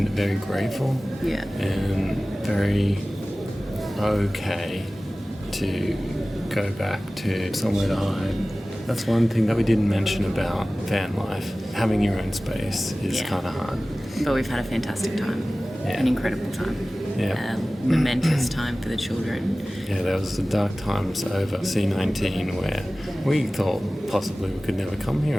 very grateful Yeah. and very okay to go back to somewhere to hide. That's one thing that we didn't mention about van life. Having your own space is Yeah. kind of hard. But we've had a fantastic time. Yeah. An incredible time. Yeah. A momentous time for the children. Yeah, there was the dark times over C19 where we thought possibly we could never come here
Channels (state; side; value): normal; both; correlation 0.97